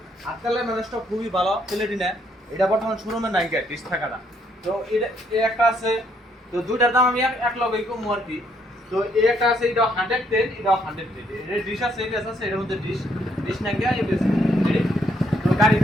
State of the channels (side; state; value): both; normal; correlation 0.70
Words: আজকালের ম্যানেজটা খুবই ভালো প্লেটিনা এটা বর্তমান শোরুমে নাই গাড়ি 30 টাকাটা তো এটা এই একটা আছে তো দুইটার দাম আমি এক লগেই কম আর কি তো এই একটা আছে এটা 110 এটাও 110 এটা ডিশ আছে এটা আছে এটার মধ্যে ডিশ না গিয়া এই তো